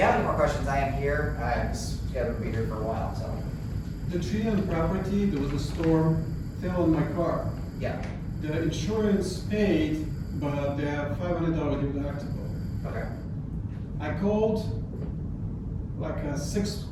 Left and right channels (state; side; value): identical; both; correlation 1.00